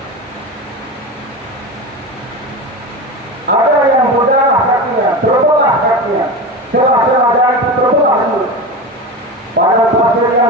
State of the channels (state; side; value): normal; both; correlation 0.24